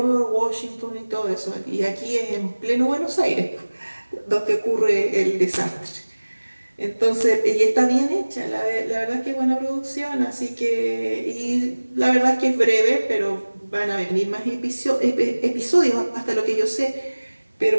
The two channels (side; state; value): both; inverted; correlation -1.00